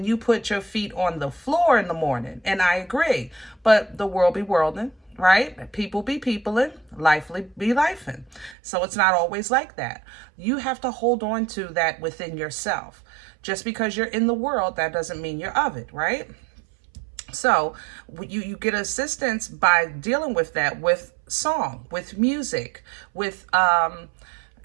you put your feet on the floor in the morning. And I agree, but the world be worlding, right? People be peopling, life be lifing. So it's not always like that. You have to hold on to that within yourself. Just because you're in the world, that doesn't mean you're of it, right? So you get assistance by dealing with that with song, with music, with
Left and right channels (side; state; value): left; drops out; at 8.6 s